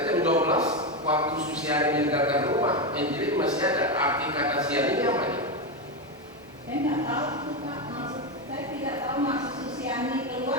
jam 12 waktu Susiani meninggalkan rumah, Angelin masih ada. Arti kata siang ini apa ya? Saya nggak tahu Pak, maksud saya tidak tahu maksud Susiani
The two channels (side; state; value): both; normal; correlation 0.11